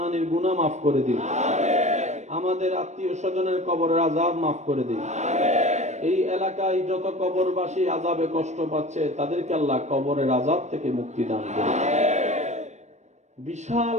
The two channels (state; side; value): late; left; 0.34 ms